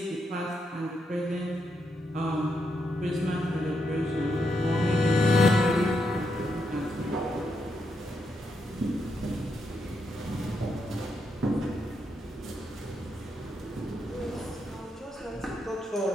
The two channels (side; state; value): both; normal; correlation 0.81